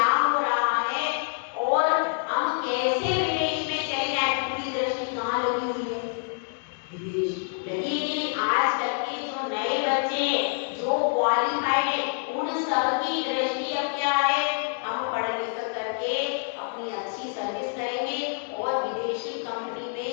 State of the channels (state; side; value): silent; right; 60 dB below the other